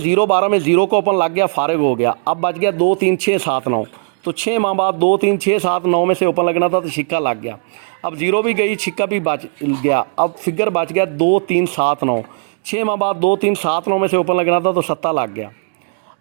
12 में 0 का ओपन लग गया, फारिग हो गया। अब बच गया 2, 3, 6, 7, 9। तो 6 माह बाद 2, 3, 6, 7, 9 में से ओपन लगना था, तो छिक्का लग गया। अब 0 भी गई, छिक्का भी बच गया। अब फिगर बच गया 2, 3, 7, 9। 6 माह बाद 2, 3, 7, 9 में से ओपन लगना था, तो 7 लग गया।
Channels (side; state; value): left; silent; 61 dB below the other